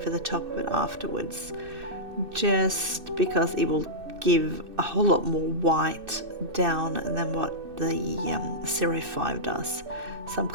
the top of it afterwards, just because it will give a whole lot more white down than what the 05 does. So I'm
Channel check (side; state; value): left; late; 2.6 ms